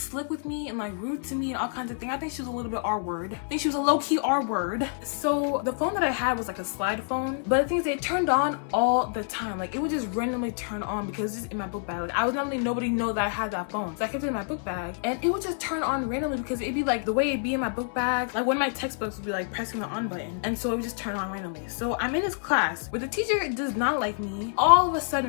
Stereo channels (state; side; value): silent; right; 60 dB below the other